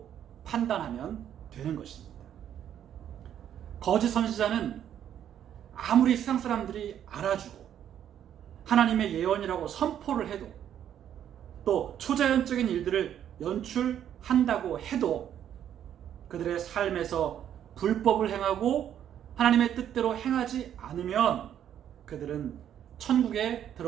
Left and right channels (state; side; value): quieter; left; 10.0 dB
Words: 판단하면 되는 것입니다. 거짓 선지자는 아무리 세상 사람들이 알아주고 하나님의 예언이라고 선포를 해도 또 초자연적인 일들을 연출한다고 해도 그들의 삶에서 불법을 행하고 하나님의 뜻대로 행하지 않으면 그들은 천국에